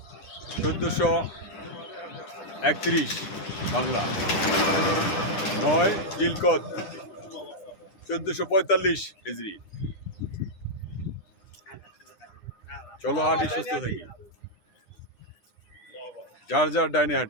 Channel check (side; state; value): right; late; 9.9 ms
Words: 1431 বাংলা, 9 জিলকদ 1445 হিজরি। চলো হাঁটি সুস্থ থাকি, যার যার ডাইনে